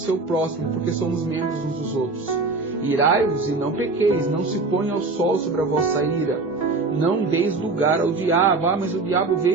próximo, porque somos membros uns dos outros. Irai-vos e não pequeis, não se ponha ao sol sobre a vossa ira. Não deis lugar ao diabo. Ah, mas o diabo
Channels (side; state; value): left; quieter; 3.7 dB